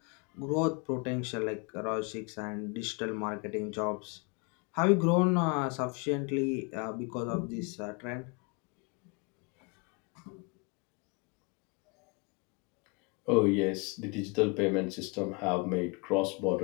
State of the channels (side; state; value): right; quieter; 31.4 dB